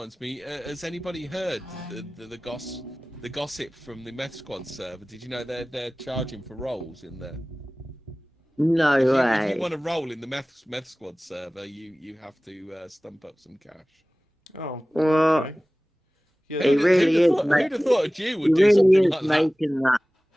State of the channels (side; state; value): both; normal; correlation 0.98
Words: me. Has anybody heard the gossip from the Meth Squad server? Did you know they're charging for roles in there? No If way. you want to roll in the Meth Squad server, you have to stump up some cash. Oh, Well, okay. Yeah, He really is. Who'd have thought a Jew He would do really something is like that? making that.